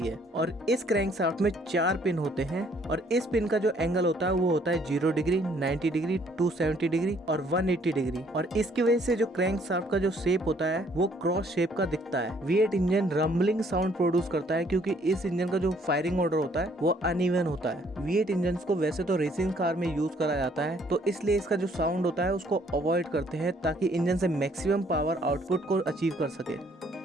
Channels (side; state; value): both; normal; correlation 0.64